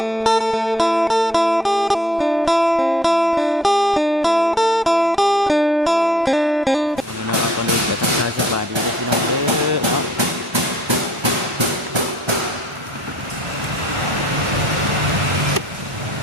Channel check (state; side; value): normal; both; correlation 0.59